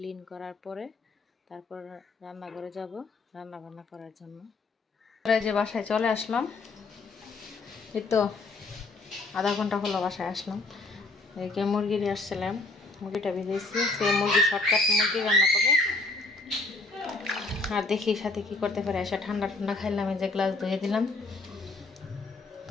করার পরে তারপর রান্নাঘরে যাব রান্না বান্না করার জন্য। যে বাসায় চলে আসলাম, এই তো আধা ঘন্টা হলো বাসায় আসলাম। এদিকে মুরগি নিয়ে আসছিলাম, মুরগিটা ভিজেছি, সে মুরগি শর্টকাট মুরগি রান্না করবো। আর দেখি সাথে কি করতে পারে, এসে ঠান্ডা ঠান্ডা খাইলাম, এই যে গ্লাস ধুয়ে দিলাম। তো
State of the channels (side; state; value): right; quieter; 3.5 dB